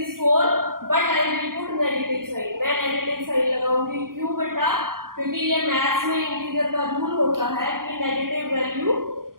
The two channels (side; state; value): left; late; 0.92 ms